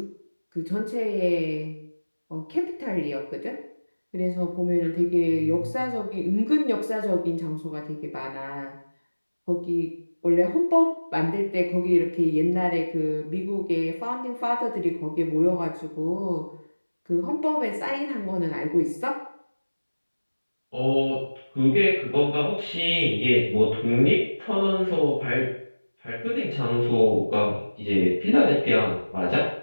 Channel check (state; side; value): inverted; both; correlation -1.00